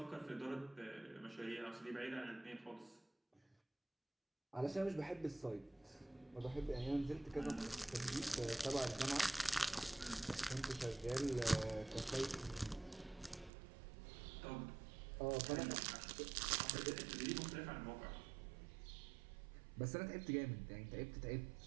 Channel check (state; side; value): drops out; left; at 13.5 s